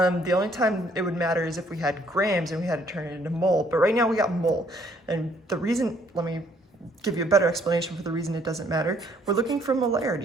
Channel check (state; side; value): normal; both; correlation 0.65